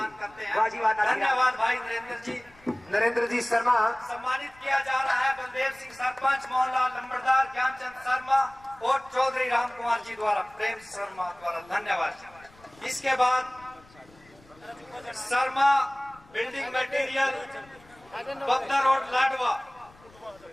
जी। करते वाह जी वाह, हैं। धन्यवाद भाई नरेंद्र जी। नरेंद्र जी शर्मा सम्मानित किया जा रहा है बलदेव सिंह सरपंच, मोहनलाल लंबरदार, ज्ञानचंद शर्मा और चौधरी राम कुमार जी द्वारा, प्रेम शर्मा द्वारा। धन्यवाद। इसके बाद Sharma building material, Bapda road, Ladwa.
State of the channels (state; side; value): noise; left; rumble, 27 dB below the sound